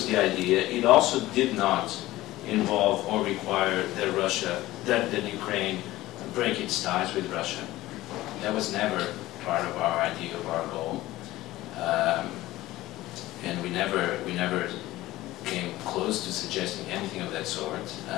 the idea. It also did not involve or require that Ukraine break its ties with Russia. That was never part of our idea of our goal, and we never came close to suggesting anything of that sort.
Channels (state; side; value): quieter; right; 16.9 dB